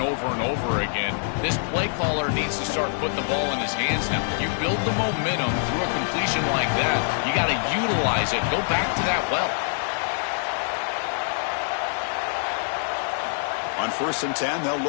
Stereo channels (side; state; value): right; silent; digital silence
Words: and over again. This play caller needs to start putting the ball in his hands now. You build the momentum through a completion like that. You got to utilize it. Go back to that well. On 1st and 10, they'll